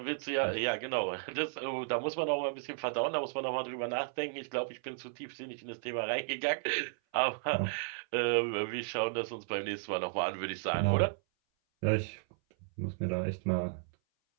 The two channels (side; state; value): left; silent; 55 dB below the other